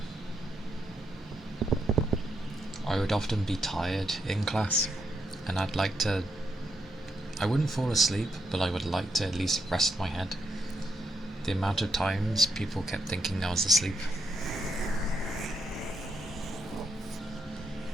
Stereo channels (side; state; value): both; normal; correlation 0.80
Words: I would often be tired in class, and I wouldn't fall asleep, but I would like to at least rest my head. The amount of times people kept thinking I was asleep.